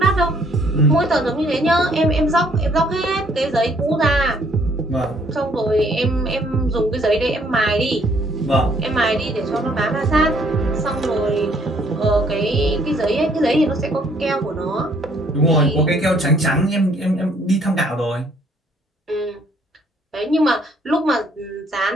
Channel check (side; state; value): both; normal; correlation 0.64